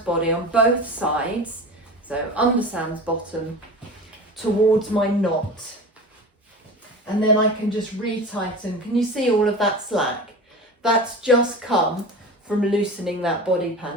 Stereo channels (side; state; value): both; normal; correlation 0.32